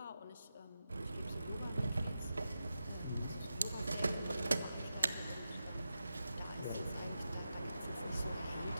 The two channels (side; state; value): both; inverted; correlation -0.90